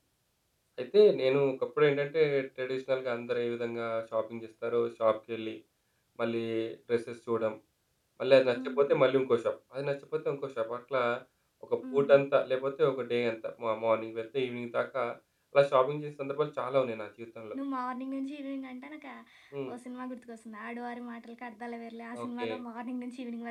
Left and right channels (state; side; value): identical; both; correlation 1.00